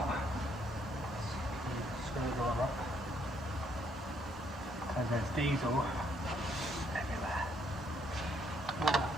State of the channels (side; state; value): both; normal; correlation 0.70